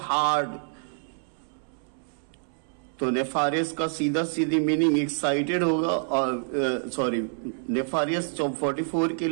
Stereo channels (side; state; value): left; silent; 60 dB below the other